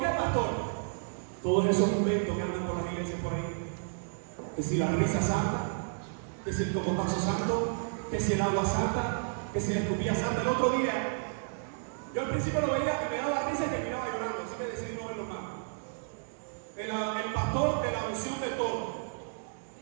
qué, pastor? Todos esos inventos que andan por las iglesias por ahí. Que si la risa santa, que si el cocotazo santo, que si el agua santa, que si la escupilla santa. El otro día, yo al principio lo veía y me daba risa y terminaba llorando, así que decidí no verlo más. El pastor de la unción de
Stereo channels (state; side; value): silent; left; digital silence